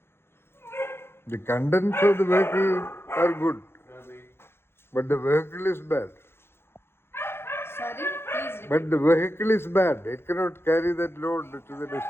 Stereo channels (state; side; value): late; right; 0.11 ms